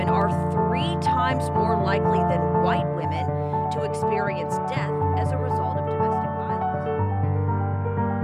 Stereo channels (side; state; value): both; identical; correlation 1.00